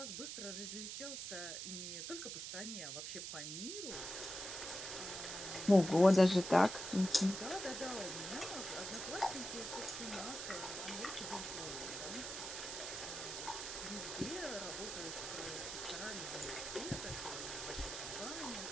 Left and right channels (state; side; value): noise; right; hiss, 6 dB below the sound